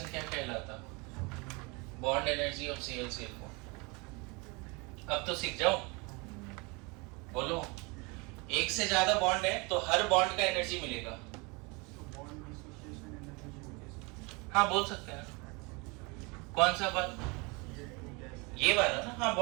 क्या कहलाता? Bond energy of Cl-Cl bond. अब तो सीख जाओ, बोलो। एक से ज्यादा बॉन्ड है तो हर बॉन्ड का एनर्जी मिलेगा। हाँ बोल सकते हैं। कौन सा बात? ये वाला ना। हाँ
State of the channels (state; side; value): quieter; left; 28.4 dB